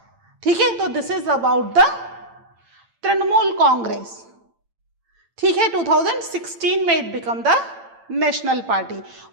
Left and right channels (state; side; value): late; left; 8.8 ms